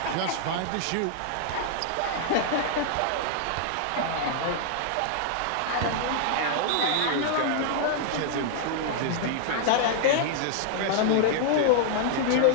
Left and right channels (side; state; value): both; different; correlation -0.01